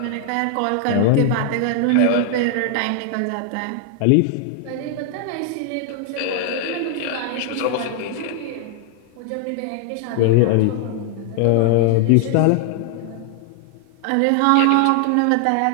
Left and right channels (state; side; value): different; both; correlation 0.00